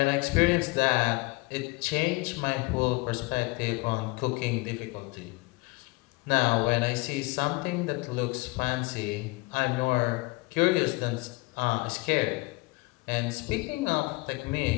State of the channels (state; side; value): quieter; right; 24.6 dB